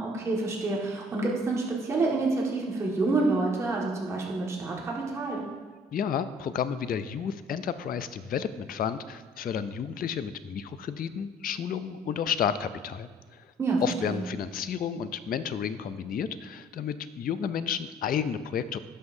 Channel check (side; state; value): both; normal; correlation 0.56